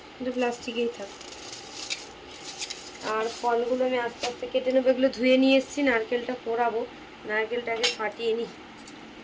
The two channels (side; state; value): both; identical; correlation 1.00